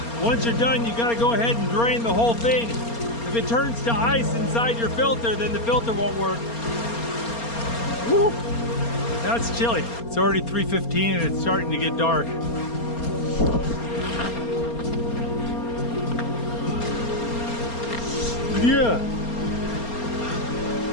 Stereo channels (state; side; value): late; right; 4.3 ms